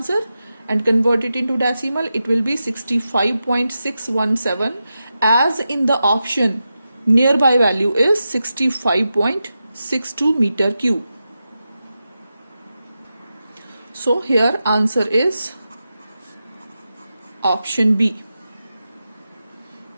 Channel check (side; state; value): both; inverted; correlation -0.90